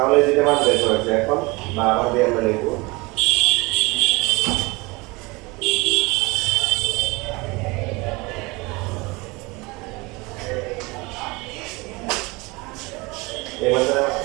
যেটা মান বের করেছে এখন বা আবার দিয়ে আমরা লিখবো এই মানটা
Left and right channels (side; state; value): left; quieter; 24.7 dB